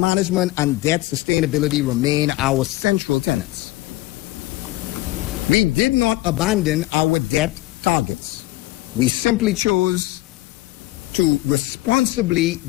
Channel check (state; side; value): quieter; right; 18.2 dB